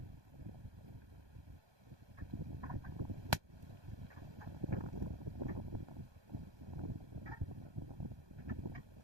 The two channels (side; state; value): left; late; 1.2 ms